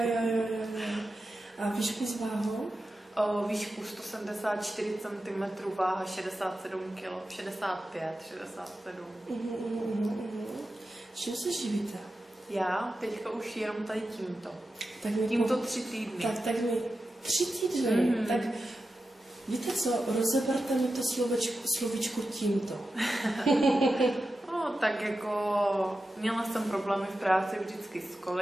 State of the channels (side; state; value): both; normal; correlation 0.91